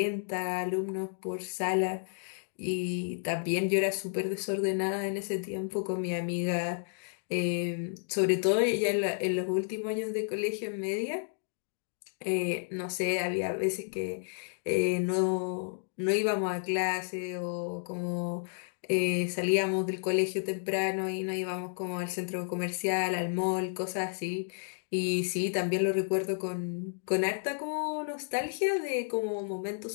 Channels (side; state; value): right; silent; digital silence